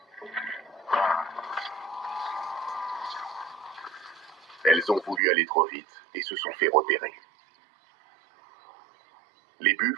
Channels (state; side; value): drops out; left; at 5.2 s